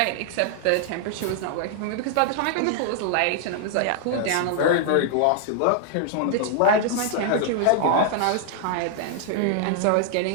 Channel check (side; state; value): both; different; correlation 0.00